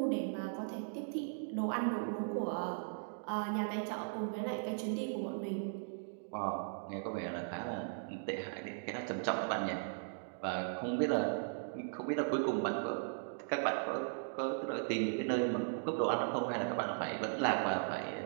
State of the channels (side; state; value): left; silent; digital silence